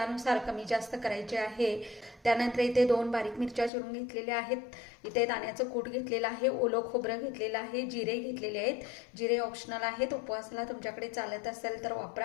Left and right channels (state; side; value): drops out; right; at 3.7 s